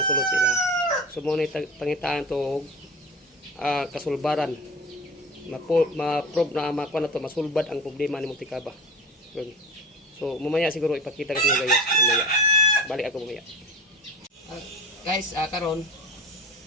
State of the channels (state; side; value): normal; both; correlation 0.34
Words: sila. So muna pangitaan to, kasulbaran, ma-prove na makuha na to, masulbad ang problema ni Montikaba. So mamaya siguro ipakita ko sa guys, mamaya balik ako mamaya. Guys, karon